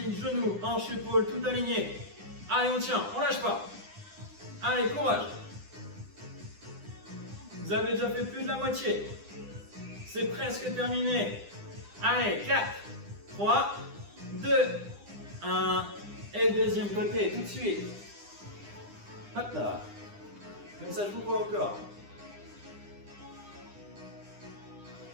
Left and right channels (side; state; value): left; late; 9.9 ms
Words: genou, hanche, épaule, tout aligné. Allez, on tient, on lâche pas. Allez, courage. Vous avez déjà fait plus de la moitié. C'est presque terminé. Allez, 4, 3, 2, 1. Et le deuxième côté, tout de suite. Hop là. Comme ça, je vous vois encore.